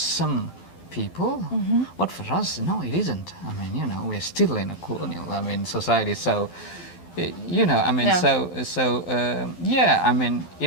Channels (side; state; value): right; late; 12 ms